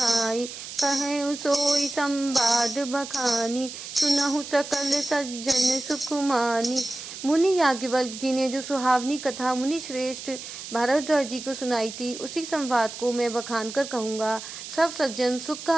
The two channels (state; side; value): noise; right; hiss, 11 dB below the sound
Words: कहेउ सोई संवाद बखानी, सुनहु सकल सज्जन सुख मानी। मुनि याज्ञवल्क्य जी ने जो सुहावनी कथा मुनि श्रेष्ठ भारद्वाज जी को सुनाई थी, उसी संवाद को मैं बखान कर कहूँगा। सब सज्जन सुख का